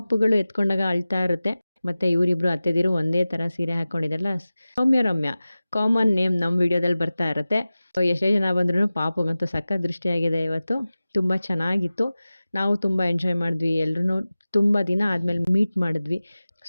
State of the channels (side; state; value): both; inverted; correlation -0.96